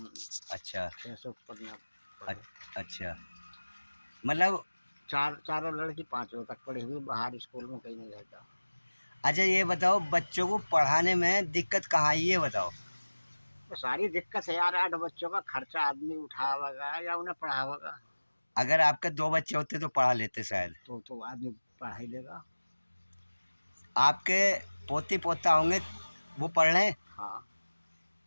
अच्छा। 600 पढ़ना पढ़े। अच्छा, मतलब। चारों लड़की 5वीं तक पढ़ी हुई, बाहर स्कूल में कहीं नहीं रहता। अच्छा, ये बताओ बच्चों को पढ़ाने में दिक्कत कहाँ आई, ये बताओ। तो सारी दिक्कत है यार, 8 बच्चों का खर्चा आदमी उठावेगा या उन्हें पढ़ावेगा। अगर आपके 2 बच्चे होते तो पढ़ा लेते शायद। तो आदमी पढ़ा ही लेगा। आपके पोती पोता होंगे, वो पढ़ रहे हैं? हाँ।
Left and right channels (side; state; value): both; inverted; correlation -1.00